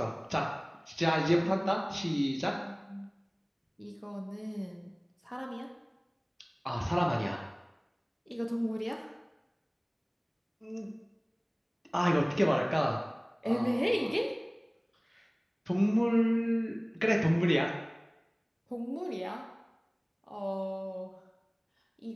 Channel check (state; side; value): identical; both; correlation 1.00